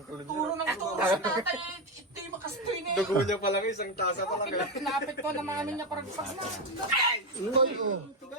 kulun. Turo ng turo sa tatay. Ito yung makastoy na yun. Dugo niya pa lang, isang tasa pa lang. Pinapit ko na namin niya parang pas na.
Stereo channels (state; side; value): normal; both; correlation 0.10